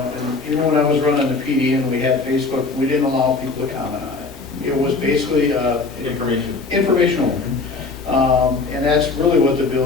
even when I was running the PD and we had Facebook, we didn't allow people to comment on it. It was basically informational. And that's really what the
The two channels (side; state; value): right; quieter; 4.0 dB